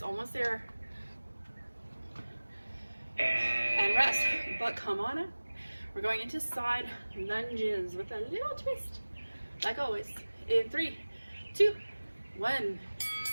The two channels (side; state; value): both; inverted; correlation -1.00